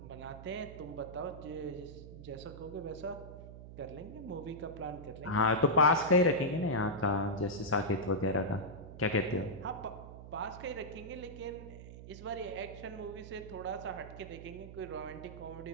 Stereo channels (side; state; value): right; noise; hum, 13 dB below the sound